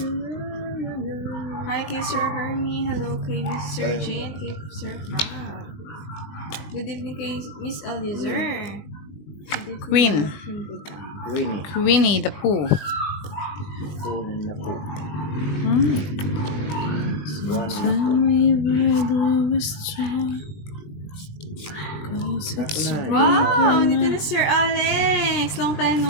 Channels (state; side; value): late; right; 20 ms